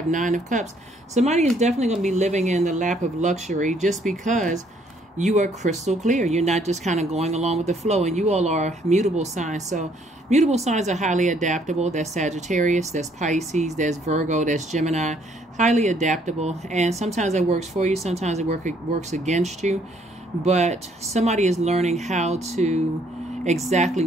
Nine of Cups. Somebody is definitely going to be living in the lap of luxury, just because you are crystal clear. You're not just kind of going along with the flow, and you all are mutable signs. So mutable signs are highly adaptable. That's Sagittarius, that's Pisces, that's Virgo, that's Gemini. Highly adaptable, and sometimes it works for you, sometimes it works against you. But somebody is learning how to exactly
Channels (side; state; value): both; normal; correlation 0.66